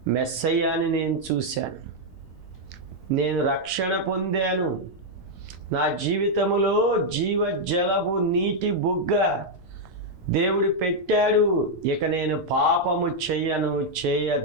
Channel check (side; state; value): left; noise; rumble, 23 dB below the sound